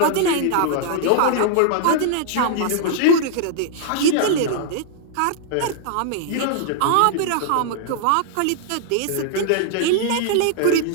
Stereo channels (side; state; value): both; different; correlation -0.01